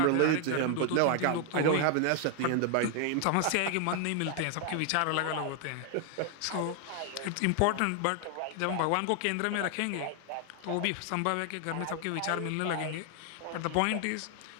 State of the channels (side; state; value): both; different; correlation 0.00